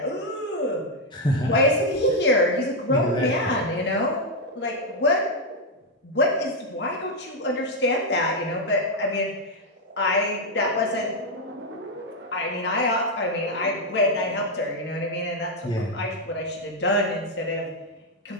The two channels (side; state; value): both; normal; correlation 0.01